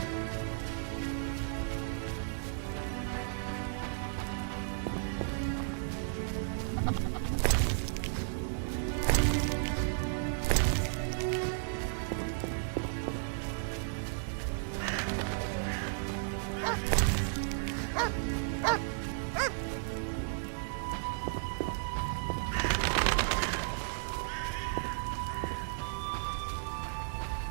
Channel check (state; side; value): silent; left; digital silence